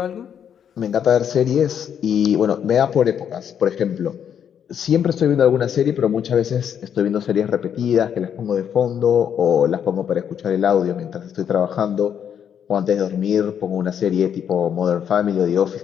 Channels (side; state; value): right; quieter; 8.6 dB